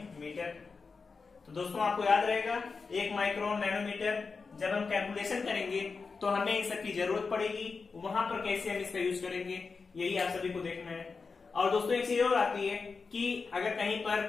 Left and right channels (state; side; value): quieter; right; 4.7 dB